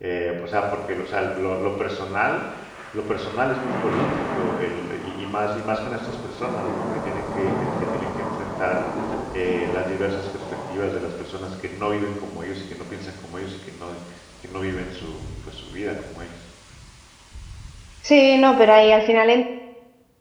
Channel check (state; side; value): identical; both; correlation 1.00